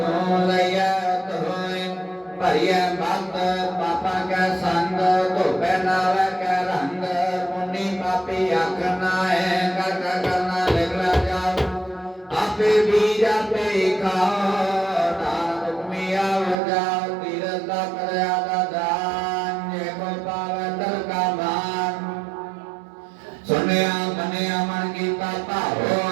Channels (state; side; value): drops out; left; at 16.6 s